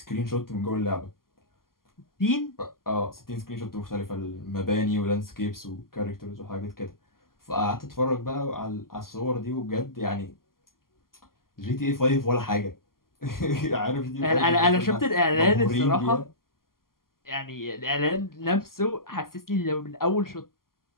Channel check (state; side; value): late; right; 0.92 ms